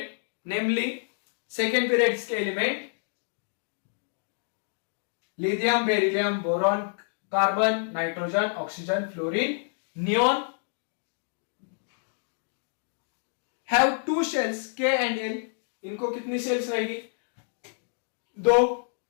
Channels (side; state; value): right; silent; digital silence